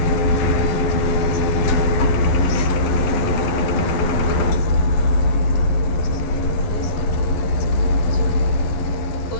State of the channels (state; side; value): late; right; 11 ms